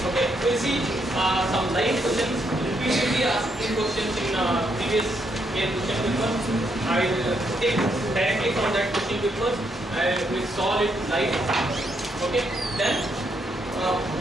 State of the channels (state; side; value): normal; both; correlation 0.76